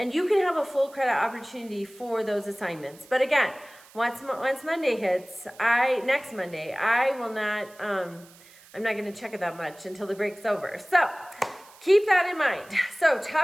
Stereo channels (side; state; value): right; noise; hiss, 24 dB below the sound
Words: you can have a full credit opportunity for those assignments. But again, once Monday hits, next Monday, I'm not going to check it that much until the break's over. So keep that in mind. So